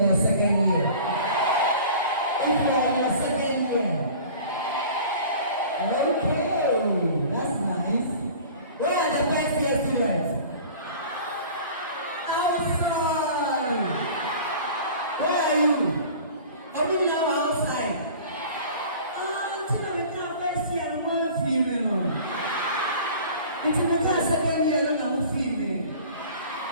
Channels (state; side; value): inverted; both; correlation -0.43